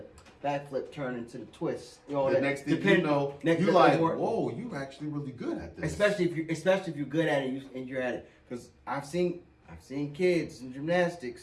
Back flip turns into the twist. You know, the next thing you know, you're like, whoa, you're actually really good at this. Especially if you're good at it and you're at it. Because I've seen I've seen kids in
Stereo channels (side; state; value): both; identical; correlation 1.00